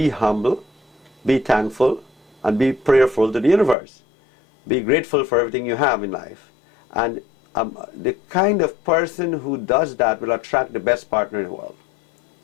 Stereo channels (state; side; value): drops out; right; at 3.8 s